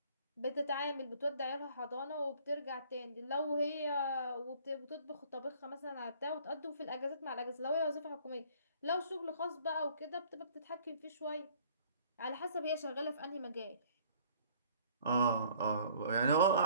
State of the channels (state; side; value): inverted; both; correlation -0.56